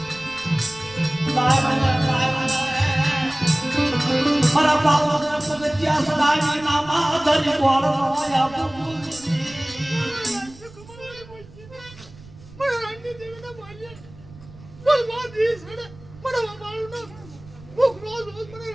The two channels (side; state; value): right; noise; rumble, 21 dB below the sound